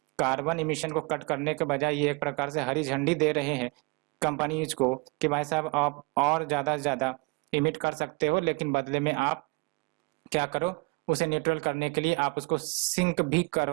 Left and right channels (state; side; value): quieter; left; 29.3 dB